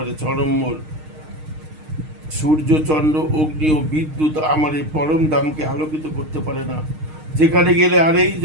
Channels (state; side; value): late; left; 6.5 ms